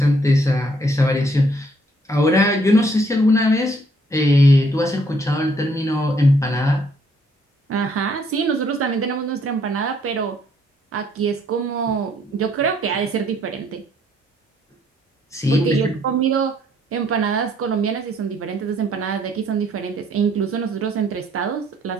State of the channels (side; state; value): both; normal; correlation 0.66